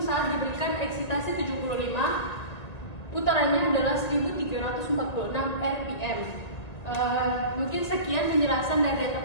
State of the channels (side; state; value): right; late; 1.9 ms